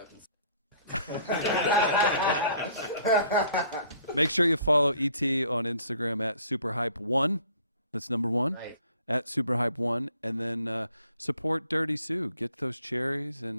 Make sure you follow ET on Instagram at SuperHype1. That's number 1. Right. At SuperHype1. And then support Dirty Sue. Get those cherries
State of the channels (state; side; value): inverted; both; correlation -0.59